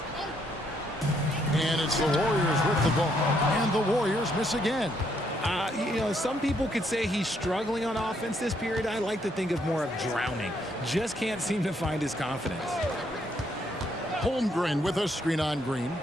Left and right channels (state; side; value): normal; both; correlation 0.72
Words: And it's the Warriors with the ball. And the Warriors miss again. Some people could say he's struggling on offense this period. I like to think of more of drowning. Just can't seem to find his confidence. Holmgren with a screen on Green.